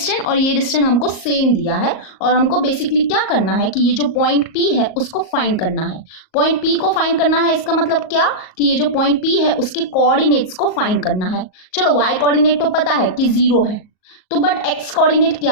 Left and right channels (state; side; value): late; right; 38 ms